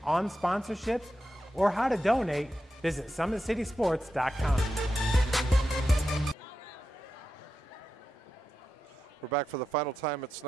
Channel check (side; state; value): both; normal; correlation 0.89